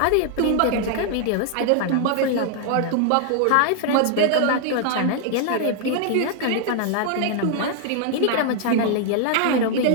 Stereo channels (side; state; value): both; different; correlation 0.00